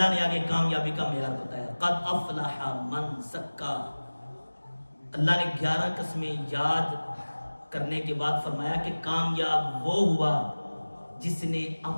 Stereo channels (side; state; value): both; inverted; correlation -1.00